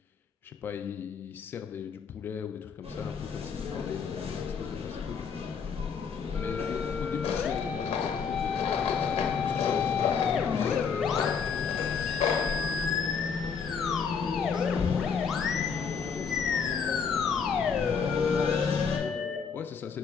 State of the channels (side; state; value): right; quieter; 6.2 dB